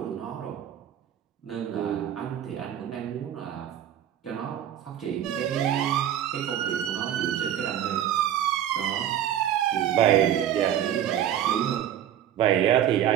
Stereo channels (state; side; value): quieter; left; 10.7 dB